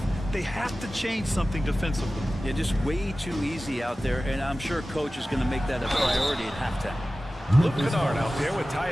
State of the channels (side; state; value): both; normal; correlation 0.96